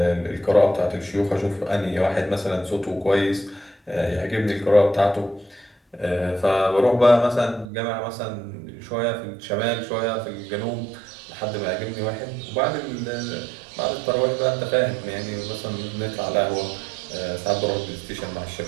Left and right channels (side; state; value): left; drops out; at 7.7 s